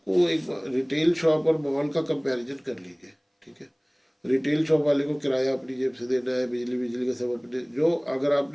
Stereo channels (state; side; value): identical; both; correlation 1.00